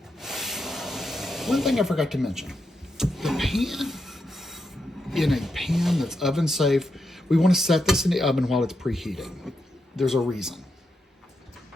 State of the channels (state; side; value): normal; both; correlation 0.84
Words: One thing I forgot to mention, the pan, in a pan that's oven safe, we want to set this in the oven while it's preheating. There's a reason.